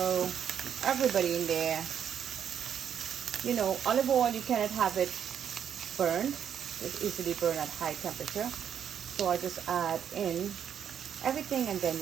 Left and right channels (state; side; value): quieter; left; 8.7 dB